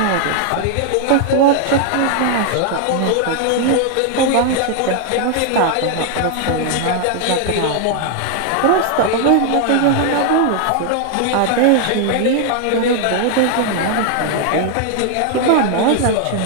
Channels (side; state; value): both; different; correlation 0.00